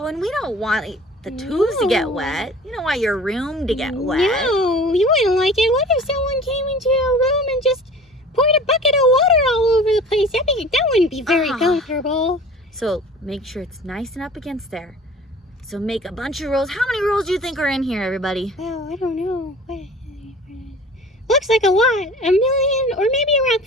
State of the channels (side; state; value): both; normal; correlation 0.44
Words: and we don't want the tubes to get No. wet. You don't want your room to get wet. No, you wouldn't like it. What if someone came into your room and just poured a bucket of water all over the place? That wouldn't be very comfortable. So make sure it's nice and up against there. So make a bunch of rolls. How many rolls do you think are in here, everybody? Well, I don't know. Looks like a lot. 1 million or maybe around